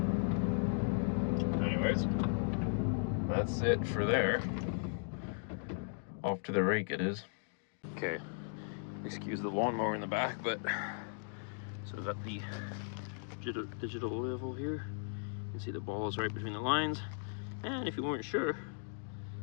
Anyways, that's it for there. Off to the rake it is. Okay, excuse the lawnmower in the back, but so I've got the digital level here. You can see the ball is right between the lines, and if you weren't sure,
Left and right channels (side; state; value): right; silent; digital silence